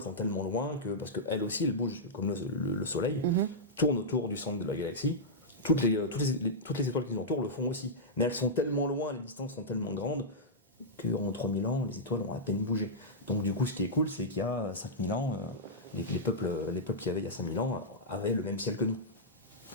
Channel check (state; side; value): normal; both; correlation -0.10